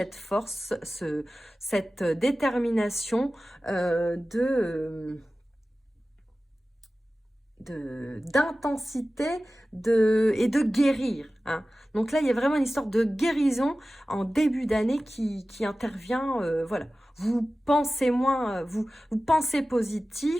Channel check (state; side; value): normal; both; correlation 0.96